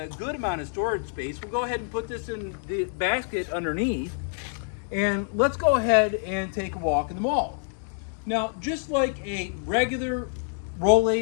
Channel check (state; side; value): silent; right; 60 dB below the other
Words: good amount of storage space. We'll go ahead and put this in the basket underneath, and let's go ahead and take a walk in the mall. Now, just like a regular